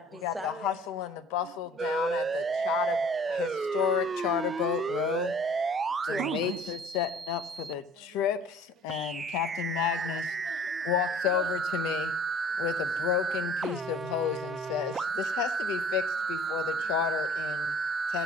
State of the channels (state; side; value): normal; both; correlation 0.50